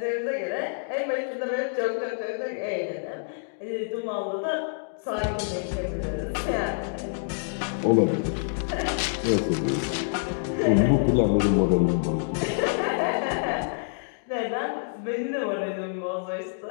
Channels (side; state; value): right; silent; digital silence